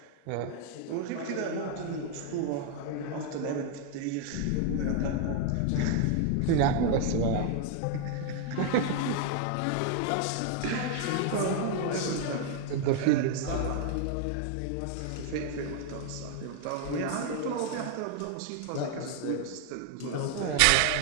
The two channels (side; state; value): both; different; correlation 0.00